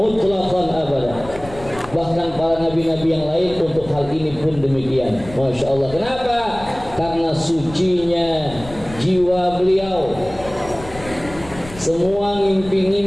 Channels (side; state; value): left; noise; rumble, 15 dB below the sound